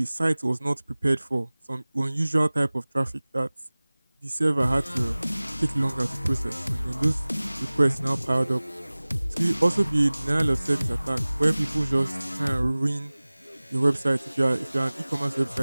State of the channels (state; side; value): inverted; both; correlation -0.99